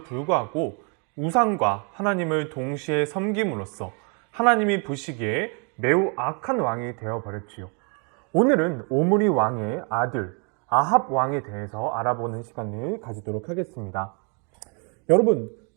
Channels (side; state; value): left; quieter; 36.8 dB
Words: 불구하고 우상과 하나님을 동시에 섬김으로써 하나님이 보시기에 매우 악한 왕이 되어버렸지요. 오늘은 오므리 왕의 아들 아합 왕에 대해서 알아보는 시간을 가지도록 하겠습니다. 여러분,